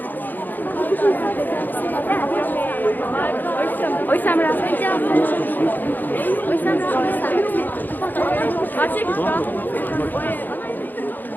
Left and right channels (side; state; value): right; late; 0.088 ms